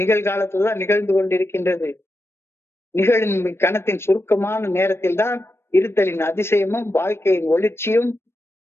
நிகழ்காலத்துலதான் நிகழ்ந்து கொண்டிருக்கின்றது. நிகழும் இக்கணத்தின் சுருக்கமான நேரத்தில் தான் இருத்தலின் அதிசயமும் வாழ்க்கையின் ஒளிர்ச்சியும்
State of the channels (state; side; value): late; right; 0.12 ms